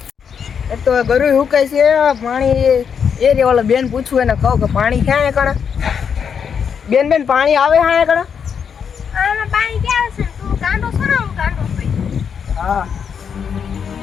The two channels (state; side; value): quieter; right; 7.1 dB